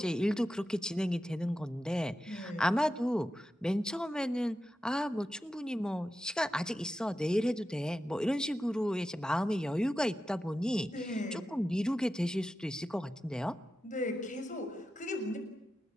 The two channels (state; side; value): normal; both; correlation 0.91